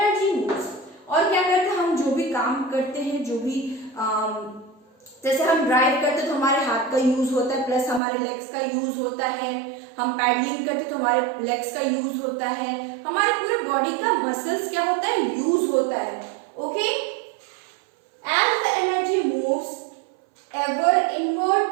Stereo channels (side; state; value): left; drops out; at 8.0 s